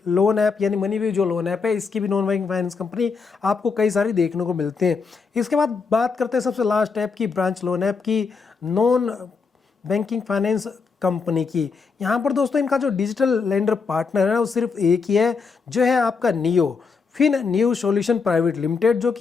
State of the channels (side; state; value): right; quieter; 5.0 dB